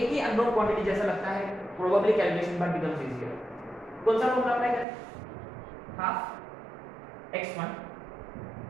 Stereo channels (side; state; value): left; drops out; at 4.9 s